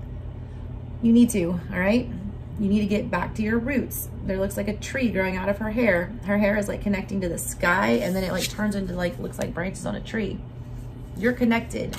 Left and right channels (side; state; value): both; identical; correlation 1.00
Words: You need to, all right? You need to get back to your roots. There looks like a tree growing out of her hair. Her hair is like connecting to the sky, and then it like turns into like, looks like branches on a tree. You're connected,